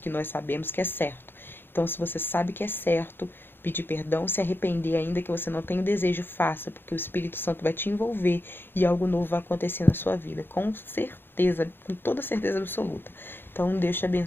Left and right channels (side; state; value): right; late; 0.10 ms